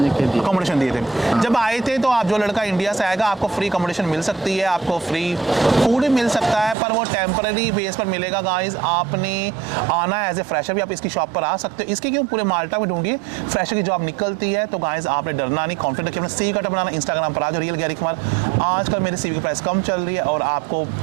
कह दिया। अकोमोडेशन दिए थे जब आए थे। तो आप जो लड़का इंडिया से आएगा आपको फ्री अकोमोडेशन मिल सकती है, आपको फ्री फूड भी मिल सकता है, पर वो टेम्पररी बेस पर मिलेगा गाइस। आपने आना है एज ए फ्रेशर भी, आप इसकी शॉप पर आ सकते हो। इसके क्यों पूरे माल्टा में ढूंढिए, फ्रेशर की जॉब निकलती है। तो गाइस आपने डरना नहीं, कॉन्फिडेंट रखिए, अपना सीवी कार्ड बनाना। इंस्टाग्राम पर आज रियल गैरी कुमार। आजकल मेरे सीवी की प्राइस कम चल रही है और आपको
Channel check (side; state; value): left; drops out; at 6.8 s